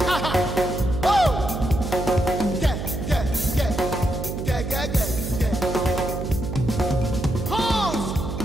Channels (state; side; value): noise; right; hum, 5 dB below the sound